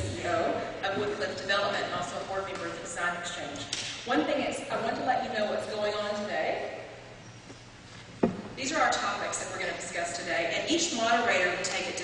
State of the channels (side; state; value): both; identical; correlation 1.00